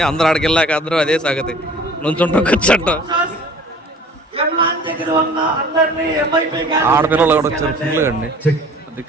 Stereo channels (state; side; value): normal; both; correlation 0.48